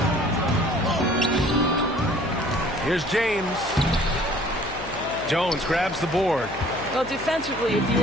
Here's James. Jones grabs the board. Well, defensively, if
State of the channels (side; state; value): left; noise; hum, 14 dB below the sound